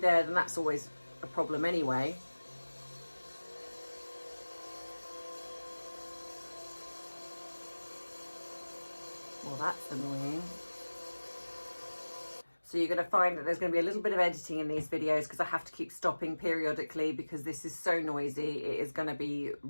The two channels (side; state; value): both; inverted; correlation -1.00